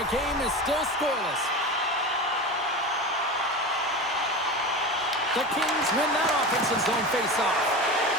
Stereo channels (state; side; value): normal; both; correlation 0.27